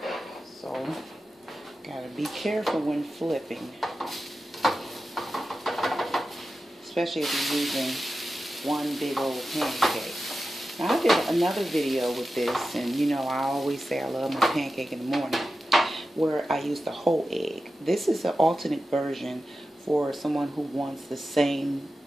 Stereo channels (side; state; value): both; normal; correlation 0.92